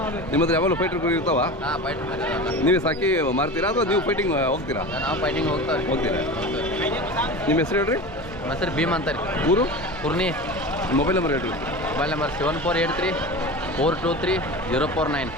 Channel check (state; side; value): normal; both; correlation 0.30